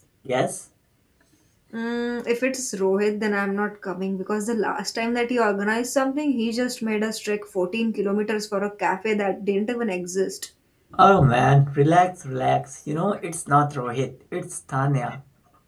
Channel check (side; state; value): both; identical; correlation 1.00